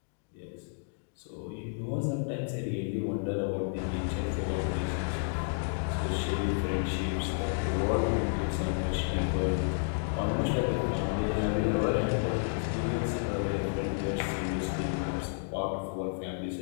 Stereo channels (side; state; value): right; silent; digital silence